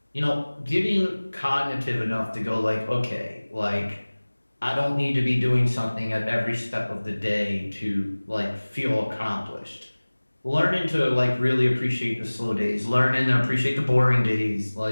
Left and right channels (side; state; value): both; inverted; correlation -1.00